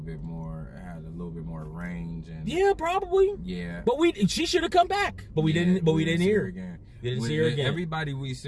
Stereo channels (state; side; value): identical; both; correlation 1.00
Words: more range and yeah, probably. Yeah. But she should have come back. But we didn't hear her again. We didn't see her again. Everybody we